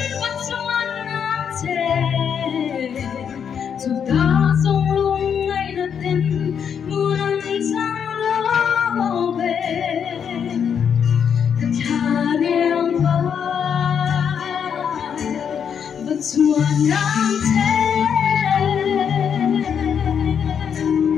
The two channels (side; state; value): right; quieter; 7.6 dB